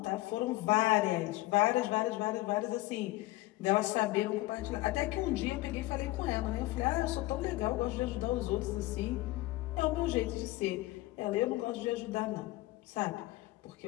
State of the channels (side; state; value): right; quieter; 18.7 dB